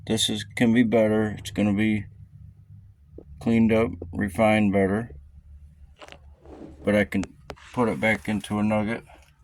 can be better. It's going to be cleaned up, refined better. But I can put it back into a nugget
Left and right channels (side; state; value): both; identical; correlation 1.00